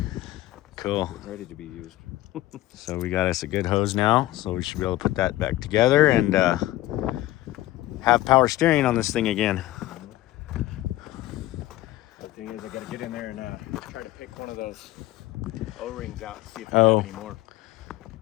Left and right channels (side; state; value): right; quieter; 16.1 dB